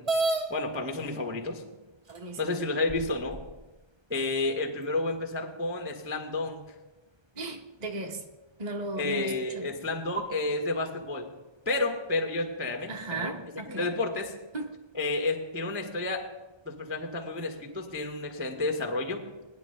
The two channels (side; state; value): left; late; 1.3 ms